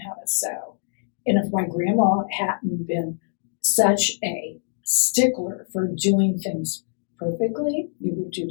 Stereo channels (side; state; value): right; silent; digital silence